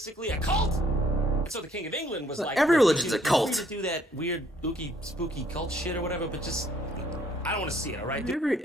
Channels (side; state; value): both; normal; correlation 0.64